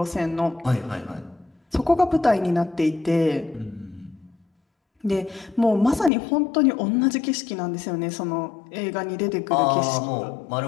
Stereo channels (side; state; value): right; drops out; at 6.1 s